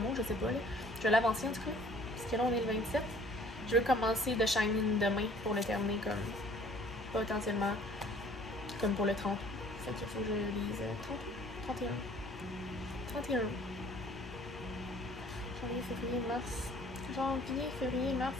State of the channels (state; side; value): normal; both; correlation 0.54